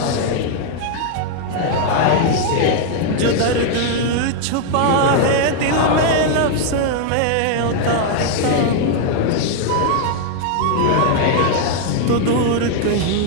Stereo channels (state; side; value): different; both; correlation 0.00